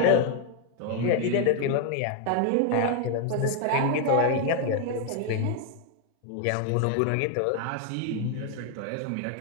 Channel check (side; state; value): both; different; correlation 0.00